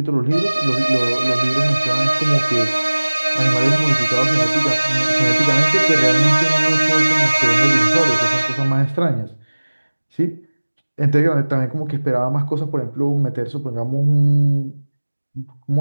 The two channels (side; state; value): both; inverted; correlation -1.00